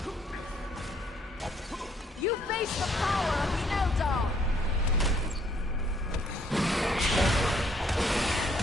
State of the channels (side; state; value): both; normal; correlation 0.66